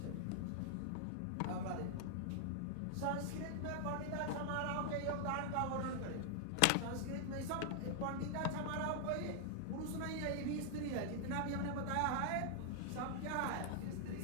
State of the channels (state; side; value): different; both; correlation 0.00